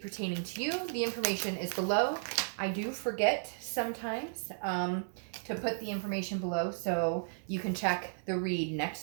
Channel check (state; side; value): silent; left; 55 dB below the other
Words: to you, the information is below. I do forget sometimes to put the information below, so you can check the read